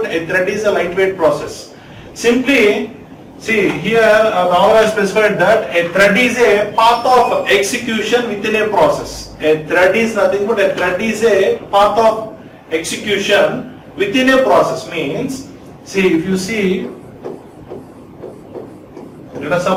a thread is a lightweight process. Simply, see here now I specified that a thread is a path of execution within a process. A thread is nothing but a thread is a path of execution within a process. Means, see, if you see, let us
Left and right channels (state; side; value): identical; both; correlation 1.00